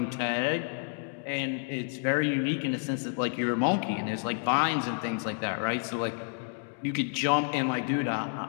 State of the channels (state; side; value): silent; right; 57 dB below the other